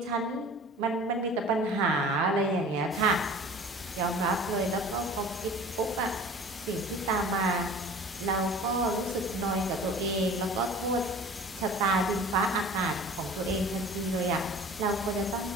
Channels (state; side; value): normal; both; correlation 0.43